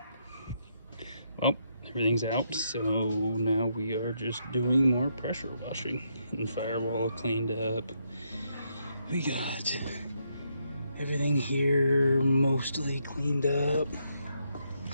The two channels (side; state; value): both; inverted; correlation -0.77